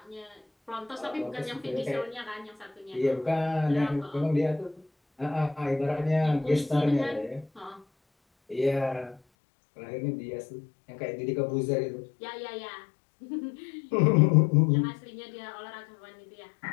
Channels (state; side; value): drops out; right; at 9.2 s